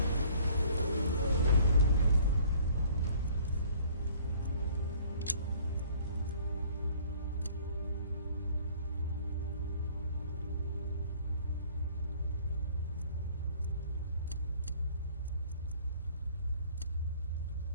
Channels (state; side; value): inverted; both; correlation -0.55